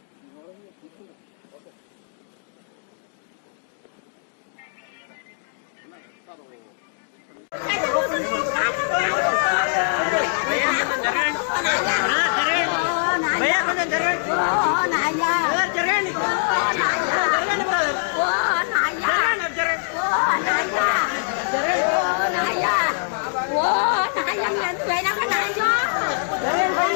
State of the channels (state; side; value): silent; right; digital silence